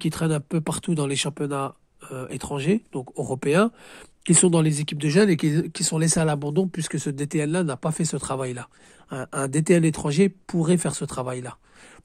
traînent un peu partout dans les championnats étrangers, donc européens, qui sont dans les équipes de jeunes et qui sont laissés à l'abandon puisque ce DTN-là n'a pas fait ce travail-là. Un DTN étranger pourrait faire ce travail-là.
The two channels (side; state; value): both; identical; correlation 1.00